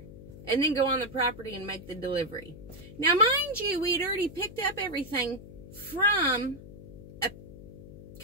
and then go on the property and make the delivery. Now, mind you, we'd already picked up everything from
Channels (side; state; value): left; noise; hum, 16 dB below the sound